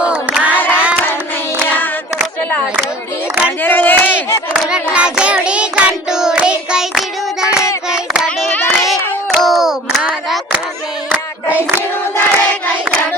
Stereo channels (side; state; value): both; normal; correlation 0.45